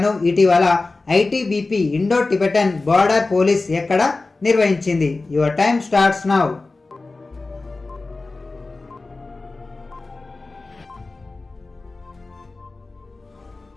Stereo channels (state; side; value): quieter; right; 3.5 dB